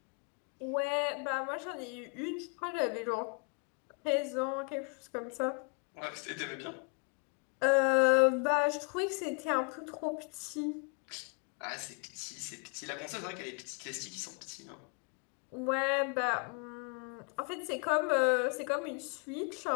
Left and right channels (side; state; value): right; quieter; 33.3 dB